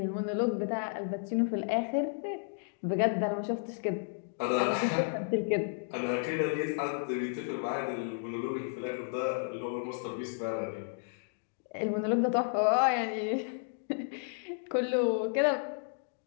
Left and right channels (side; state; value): right; silent; digital silence